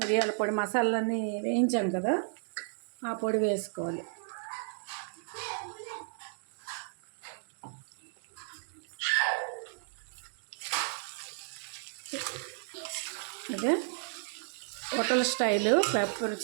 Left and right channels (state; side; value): silent; left; digital silence